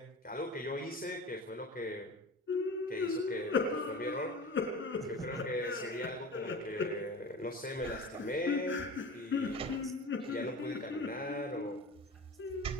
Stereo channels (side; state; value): both; normal; correlation 0.34